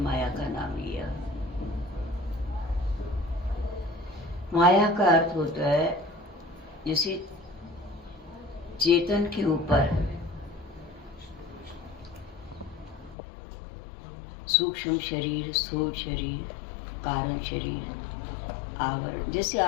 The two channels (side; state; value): right; drops out; at 13.2 s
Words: का नाम लिया। माया का अर्थ होता है जैसे चेतन के ऊपर सूक्ष्म शरीर, स्थूल शरीर, कारण शरीर, आवरण। जैसे